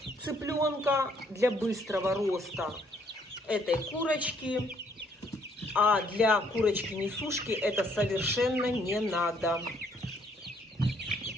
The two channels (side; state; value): both; normal; correlation 0.66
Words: цыпленка, для быстрого роста этой курочки. А для курочки-несушки это совершенно не надо.